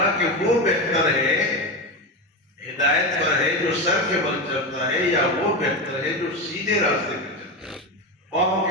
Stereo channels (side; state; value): both; normal; correlation 0.17